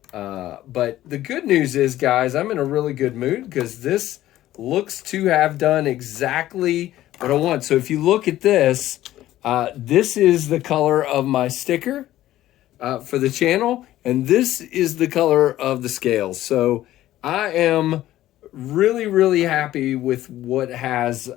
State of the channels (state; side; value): quieter; right; 14.3 dB